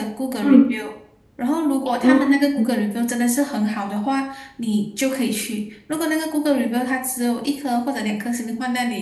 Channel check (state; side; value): identical; both; correlation 1.00